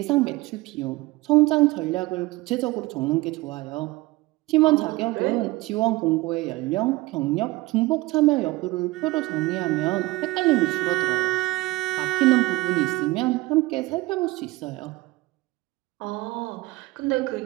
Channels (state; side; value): quieter; left; 20.3 dB